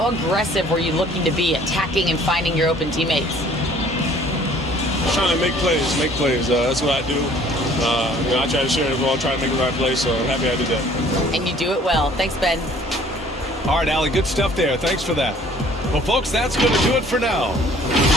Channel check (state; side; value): normal; both; correlation 0.55